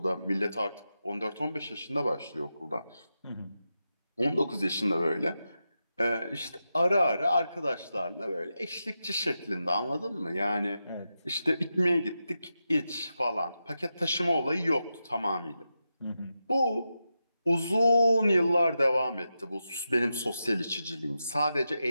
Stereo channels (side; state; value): both; inverted; correlation -0.89